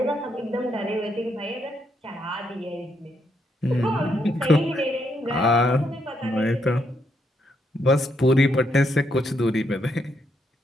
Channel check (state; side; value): normal; both; correlation 0.77